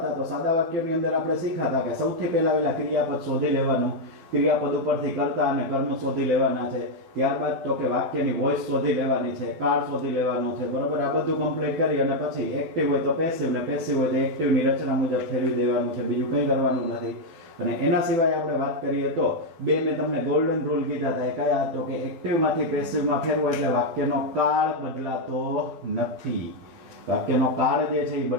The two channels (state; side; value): late; left; 12 ms